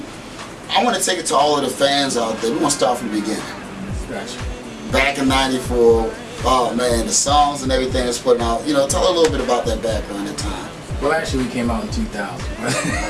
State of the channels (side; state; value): both; identical; correlation 1.00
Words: I want to take it to all of the fans out there. We want to start from the beginning. Gotcha. Back in '94, oh man, the songs and everything that's putting out. You know, tell a little bit about that background at the time. Well, actually, we came out in